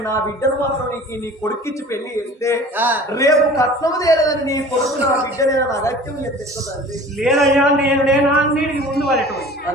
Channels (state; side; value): normal; both; correlation 0.43